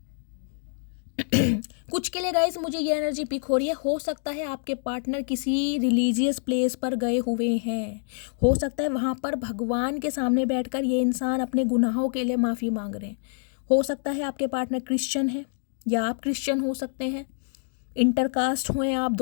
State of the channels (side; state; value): right; silent; 59 dB below the other